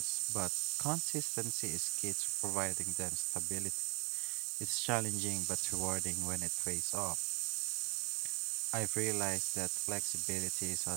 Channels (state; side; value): quieter; left; 30.5 dB